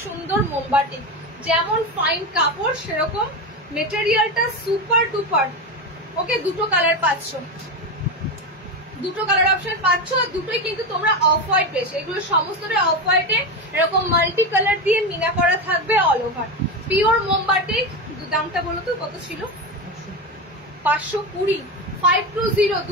সুন্দর মোমবাটিক। যেমন ফাইন কাপড় সেরকম মেটেরিয়ালটা সুপার ডুপার। ওকে, দুটো কালার পাচ্ছ, দুটো কালার অপশন পাচ্ছ। দুটোই কিন্তু তোমরা অফ হোয়াইট পেয়েছো, এগুলো সমস্তটাই অফ হোয়াইটে এরকম মাল্টি কালার দিয়ে মিনা করা থাকবে অল ওভার। পিওর মোমবাটিক। দামটা বলো তো কত ছিল? 520, 520।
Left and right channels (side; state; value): both; normal; correlation 0.17